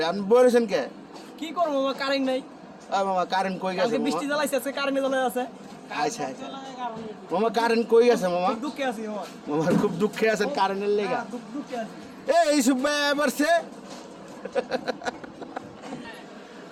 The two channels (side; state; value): both; identical; correlation 1.00